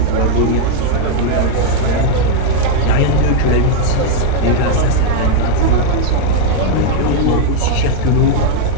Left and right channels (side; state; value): both; different; correlation 0.00